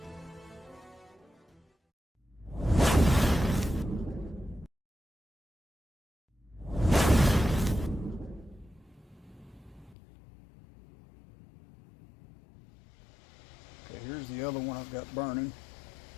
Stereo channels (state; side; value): drops out; right; at 10.0 s